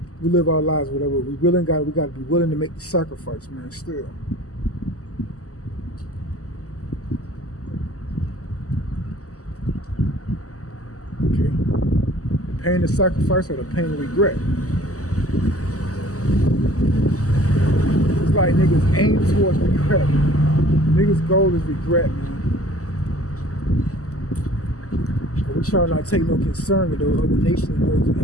We live our lives, whatever. We got to be willing to make the sacrifice, man, still. Okay. The pain of sacrifice or the pain of regret. It's like niggas aim towards regret. Niggas' goal is regret, man. But we try not to take no concern with those other nations and those who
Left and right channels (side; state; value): right; late; 0.66 ms